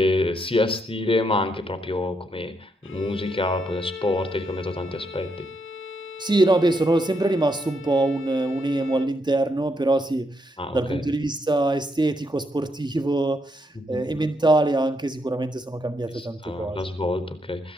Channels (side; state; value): both; normal; correlation 0.78